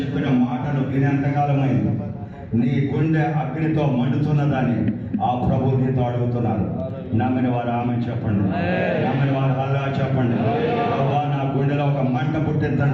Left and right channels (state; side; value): identical; both; correlation 1.00